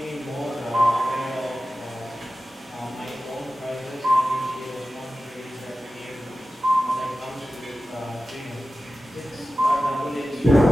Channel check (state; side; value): normal; both; correlation 0.95